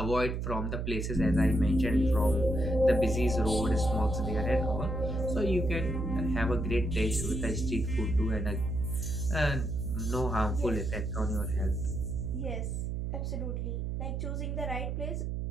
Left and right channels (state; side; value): noise; right; hum, 2 dB below the sound